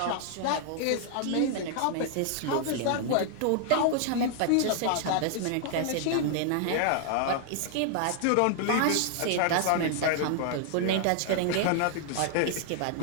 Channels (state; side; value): different; both; correlation 0.00